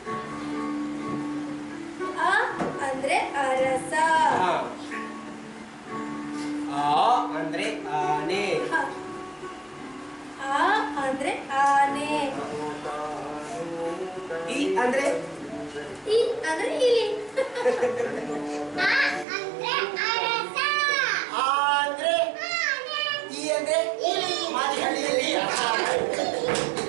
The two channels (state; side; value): drops out; left; at 19.2 s